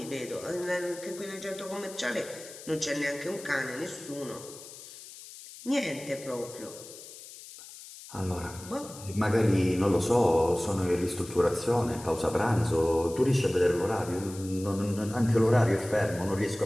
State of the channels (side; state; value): left; noise; hiss, 16 dB below the sound